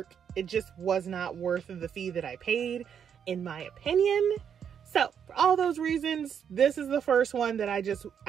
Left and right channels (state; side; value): quieter; left; 8.0 dB